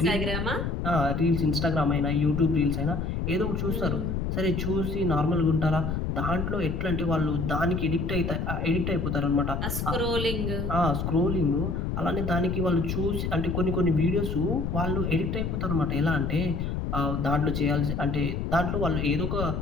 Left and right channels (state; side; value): noise; left; rumble, 2 dB below the sound